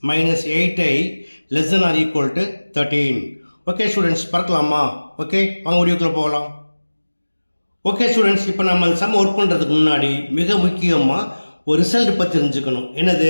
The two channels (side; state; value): both; inverted; correlation -1.00